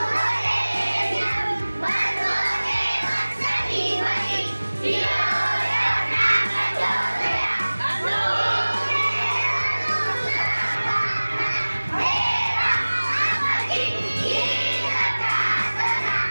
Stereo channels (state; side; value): inverted; both; correlation -1.00